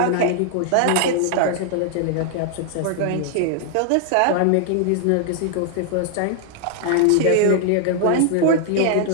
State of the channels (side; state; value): both; different; correlation 0.00